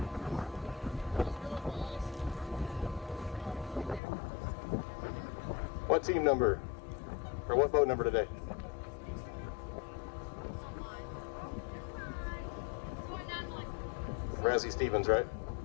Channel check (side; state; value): right; drops out; at 4.0 s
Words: What team number? Or what boat number today? Razzie Stevens, right?